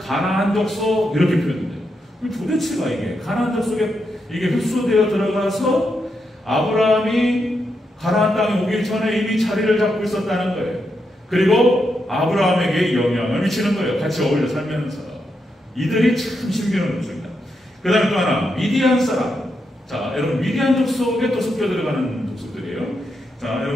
족속 이렇게 표현돼요. 도대체가 이게 가나안 족속에 이게 흡수되어 들어가서 아브라함이 가나안 땅에 오기 전에 이미 자리를 잡고 있었다는 거예요. 그리고 아브라함에게 영향을 미치는 거예요. 같이 어울려 살면서. 이들이 참 신비로운 족속입니다. 그 다음에 또 하나, 미디안 사람. 자, 여러분, 미디안 족속에 또 섞여 들어가는 족속들이에요. 자,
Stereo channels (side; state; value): both; normal; correlation 0.83